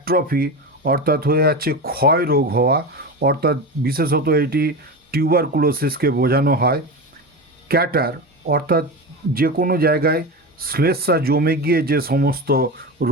অর্থাৎ হয়ে যাচ্ছে ক্ষয় রোগ হওয়া, অর্থাৎ বিশেষত এটি টিউবারকুলোসিসকে বোঝানো হয়। ক্যাটার অর্থাৎ যে কোনো জায়গায় শ্লেষ্মা জমে গিয়ে যে সমস্ত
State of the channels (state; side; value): normal; both; correlation 0.23